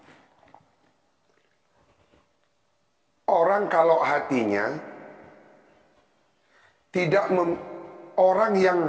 Orang kalau hatinya orang yang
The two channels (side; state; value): both; identical; correlation 1.00